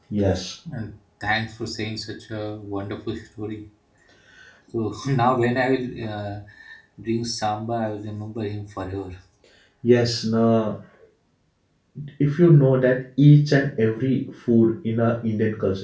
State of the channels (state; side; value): identical; both; correlation 1.00